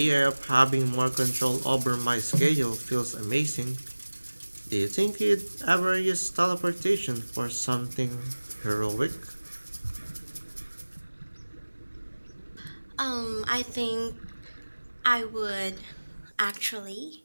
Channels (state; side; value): inverted; both; correlation -1.00